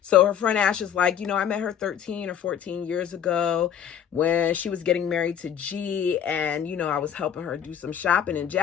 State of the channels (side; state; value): right; quieter; 8.9 dB